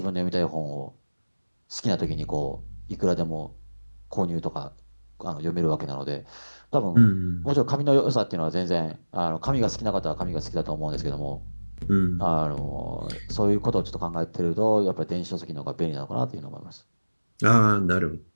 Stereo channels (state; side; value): inverted; both; correlation -1.00